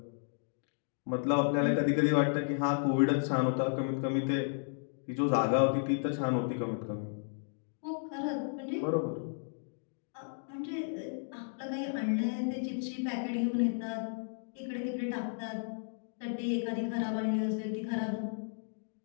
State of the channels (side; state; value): right; silent; digital silence